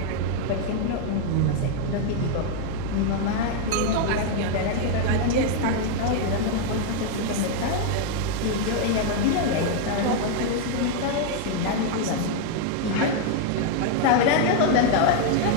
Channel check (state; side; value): different; both; correlation 0.00